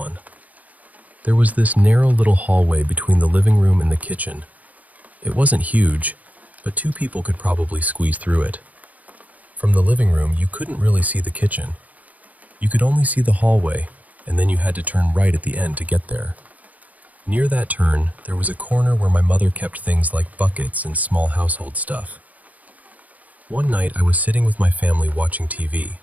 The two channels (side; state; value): left; late; 0.075 ms